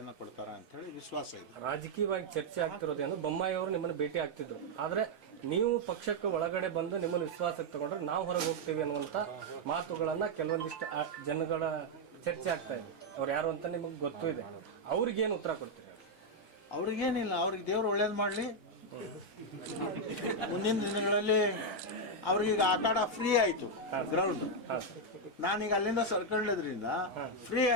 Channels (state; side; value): normal; both; correlation 0.00